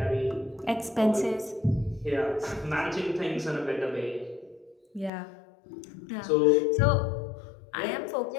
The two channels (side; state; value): right; drops out; at 5.1 s